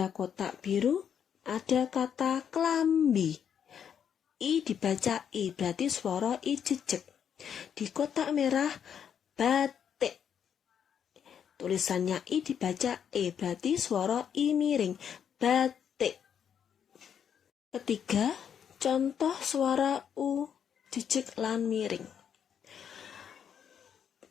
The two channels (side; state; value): right; quieter; 8.2 dB